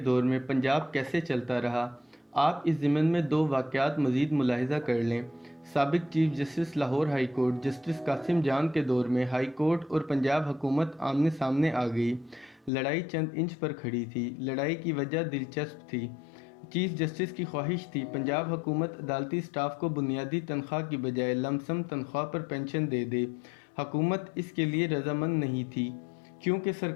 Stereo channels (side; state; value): right; drops out; at 12.7 s